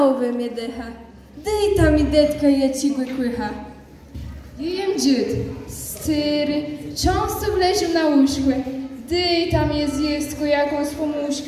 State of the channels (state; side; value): identical; both; correlation 1.00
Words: ve mi deha. Dejta mi detka je cigły kłycha. Jem dzied, styry, często wleził na łóżkę. Dejta mnie zjestko jakąś